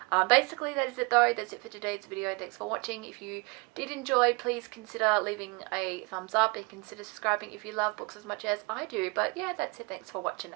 Basically, that is it though. That's it for today's video. Thanks for watching. If you did enjoy, please consider leaving a thumbs up and consider subscribing if you love books as much as I do. But yeah, that's it. Thanks for watching.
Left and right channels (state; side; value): quieter; left; 28.3 dB